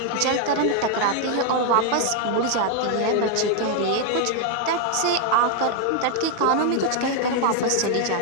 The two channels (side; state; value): both; different; correlation 0.01